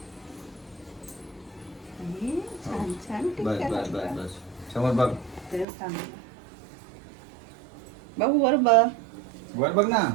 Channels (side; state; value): left; drops out; at 5.7 s